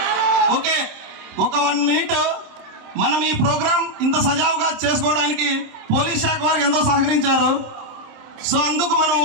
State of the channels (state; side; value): late; left; 27 ms